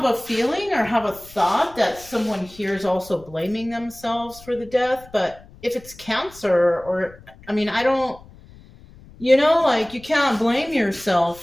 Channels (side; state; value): left; noise; rumble, 22 dB below the sound